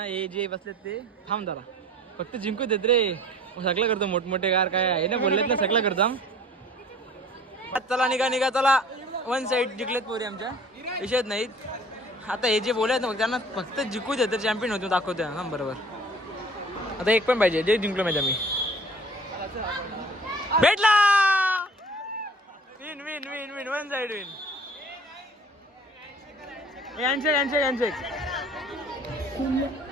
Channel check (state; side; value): normal; both; correlation 0.48